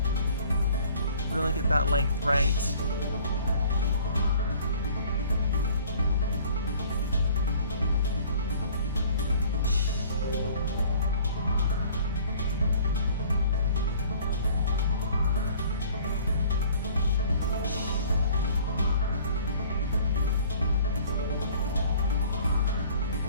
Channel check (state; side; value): inverted; both; correlation -0.52